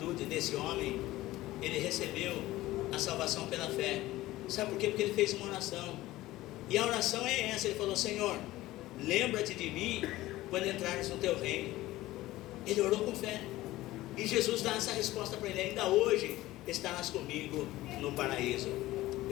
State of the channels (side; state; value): right; quieter; 17.0 dB